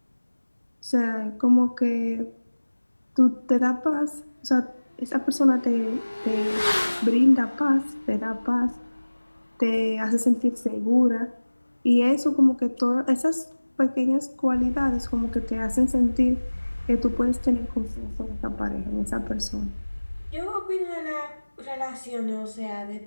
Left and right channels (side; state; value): both; inverted; correlation -1.00